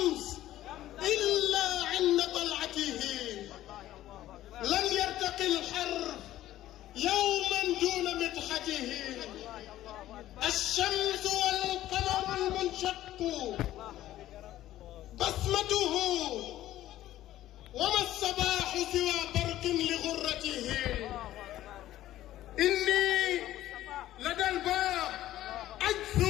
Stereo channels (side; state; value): right; quieter; 14.0 dB